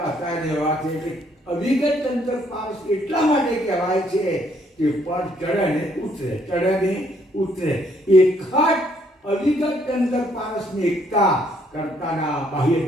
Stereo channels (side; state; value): both; normal; correlation 0.68